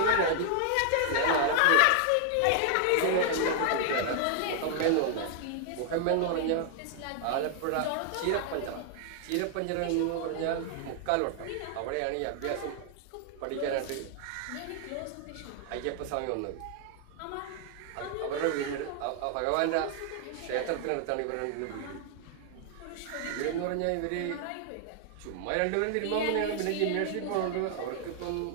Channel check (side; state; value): both; different; correlation 0.00